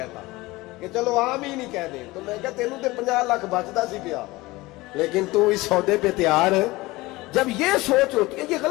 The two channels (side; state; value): right; quieter; 20.5 dB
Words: کہ چلو آمین ہی کہہ دیں۔ تو میں کہا تینوں تے 50 لاکھ بچتا سی پیا، لیکن تو اس سودے پہ تیار ہے۔ جب یہ سوچ ہوتی ہے، یہ